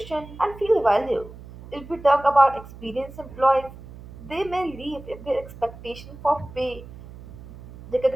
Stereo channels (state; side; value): noise; right; hum, 16 dB below the sound